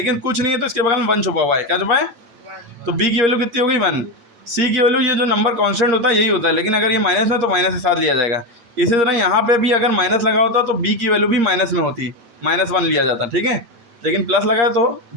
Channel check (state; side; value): late; left; 8.5 ms